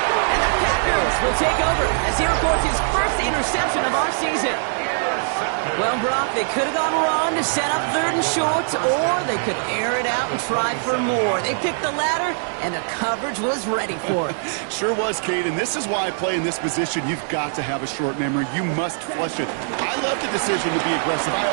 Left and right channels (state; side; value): silent; left; digital silence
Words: And the Packers will take over as he records his first interception of our season. Well, Brock, they could have gone run to set up 3rd and short, or they could air it out and try for more. They picked the latter, and the coverage was ready for it. Sure was, Kate, and this is why I play in this position. You've got to have a short memory. You must flush it. I love the decision to be aggressive. I